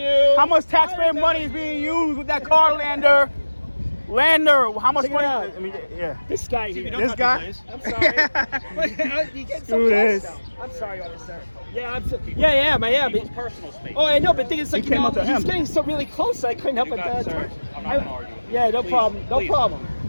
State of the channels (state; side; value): inverted; both; correlation -1.00